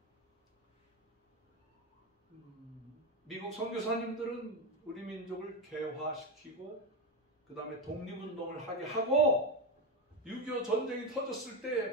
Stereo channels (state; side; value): normal; both; correlation 0.13